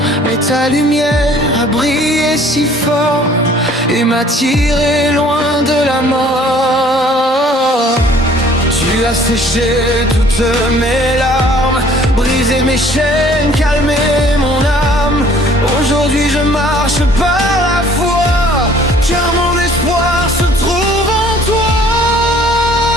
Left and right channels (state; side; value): normal; both; correlation 0.55